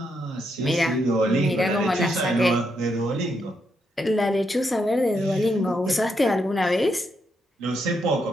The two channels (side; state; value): both; normal; correlation 0.79